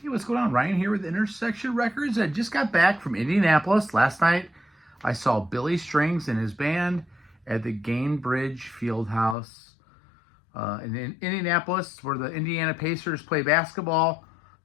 Hey, what's going on? Ryan here with Intersection Records. I just got back from Indianapolis. Last night, I saw Billy Strings and his band at the Gainbridge Fieldhouse in Indianapolis, where the Indiana Pacers play basketball.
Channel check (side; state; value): right; drops out; at 9.3 s